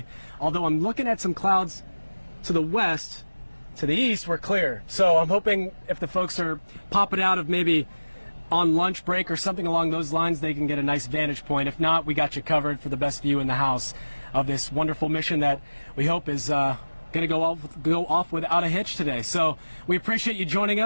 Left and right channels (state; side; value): inverted; both; correlation -1.00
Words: although I'm looking at some clouds to the west. To the east, we're clear. So I'm hoping if the folks are popping out of maybe on lunch break or something along those lines, they can get a nice vantage point. If not, we got you covered for the best view in the house of this wonderful mission that we hope is going to go off without a hitch today. So we appreciate you joining